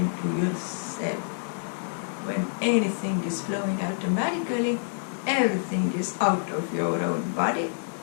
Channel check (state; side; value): silent; right; digital silence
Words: to yourself? When anything is flowing automatically, everything is out of your own body,